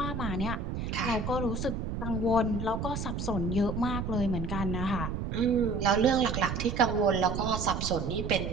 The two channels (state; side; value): noise; right; rumble, 4 dB below the sound